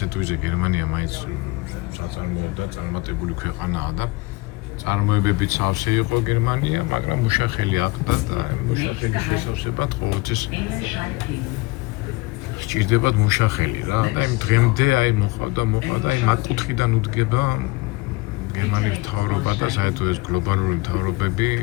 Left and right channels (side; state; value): right; quieter; 23.7 dB